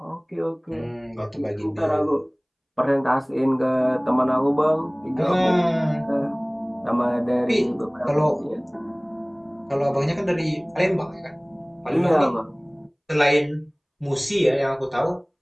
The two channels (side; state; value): both; identical; correlation 1.00